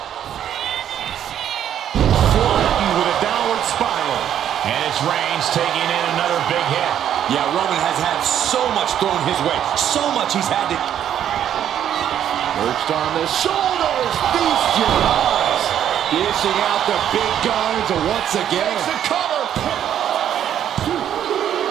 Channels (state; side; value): quieter; left; 10.1 dB